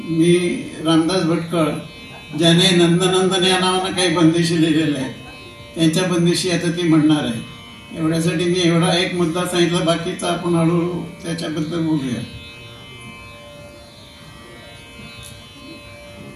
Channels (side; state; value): both; identical; correlation 1.00